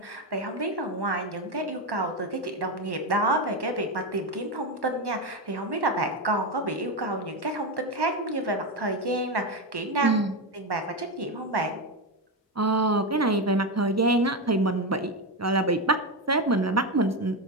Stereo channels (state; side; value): normal; both; correlation 0.12